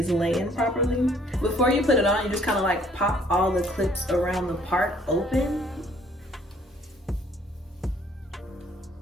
laying properly. Before you put it on, you just kind of like pop all the clips around the part open.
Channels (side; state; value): both; normal; correlation 0.60